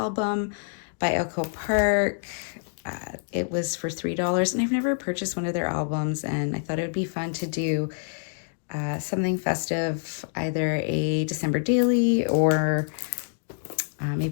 by Echo Park. It was for $3, and I've never purchased one of their albums, and I thought it would be fun to do something festive, either a December daily or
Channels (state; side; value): silent; right; 61 dB below the other